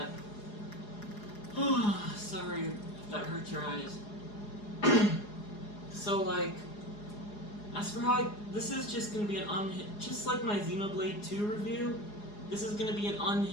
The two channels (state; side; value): late; right; 4.8 ms